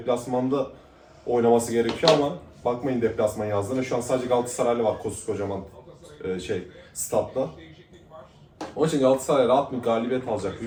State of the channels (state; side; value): identical; both; correlation 1.00